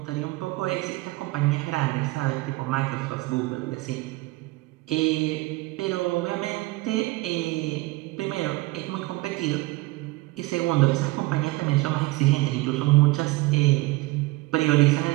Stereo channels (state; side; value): quieter; left; 20.7 dB